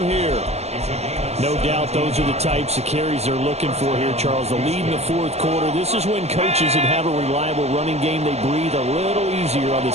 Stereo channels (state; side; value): late; left; 0.31 ms